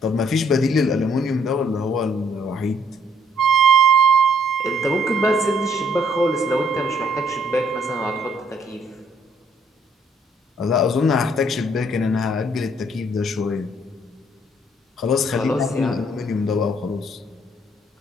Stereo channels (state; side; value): normal; both; correlation 0.65